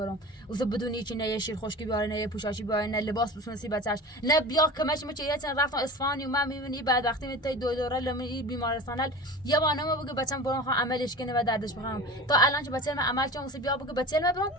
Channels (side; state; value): both; normal; correlation 0.34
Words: واسه بدون هیچ نه یه شیر خشکی بیاره نه یه پوشاشی بیاره نه لباس بسونسی بچهش نه بیا کمش مچ یه چند رفتم اصفهان و من میبینی بعد وقتی میتای دو دوره لمی بیمارستان یه بانه ما بگه بچم برام خواهم عملش کنه و دردش بخوام تا الان که بچه من عمل چون واسه بیا بگه بچه من برام